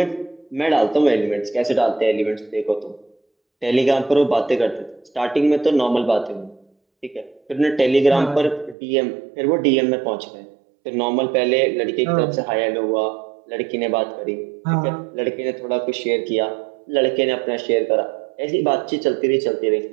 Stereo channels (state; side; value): drops out; left; at 8.8 s